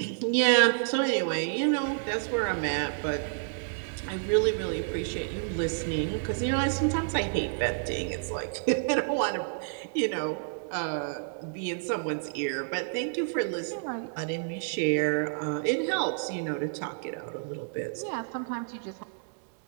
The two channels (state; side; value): silent; left; 58 dB below the other